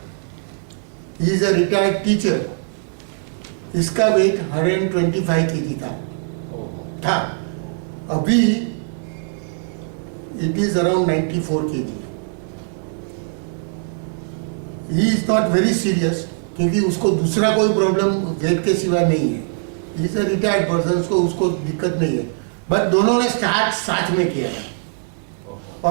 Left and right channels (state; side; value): silent; left; 63 dB below the other